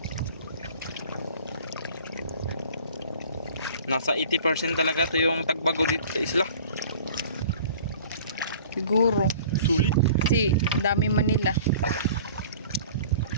Nasa 80% talaga to yung tagbago dito sa isla. Siguro. Sulit. Kasi dami Manila.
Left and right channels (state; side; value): inverted; both; correlation -0.46